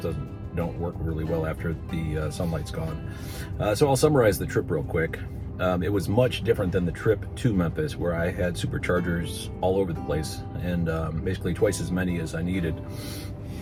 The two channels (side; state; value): both; identical; correlation 1.00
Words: don't work really well after the sunlight's gone. So I'll summarize the trip real quick. It was much different than the trip to Memphis, where I had superchargers all over the place and basically twice as many as I needed.